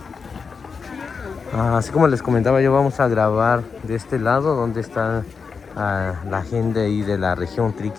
Así como les comentaba, yo vamos a grabar de este lado donde está la gente ahí de la región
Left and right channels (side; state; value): right; quieter; 5.4 dB